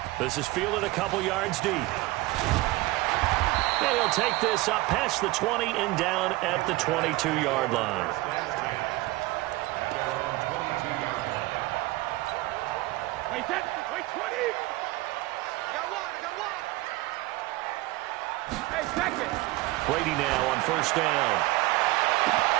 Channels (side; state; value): left; quieter; 20.1 dB